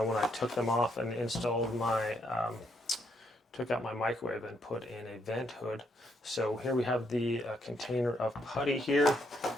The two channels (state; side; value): normal; both; correlation 0.74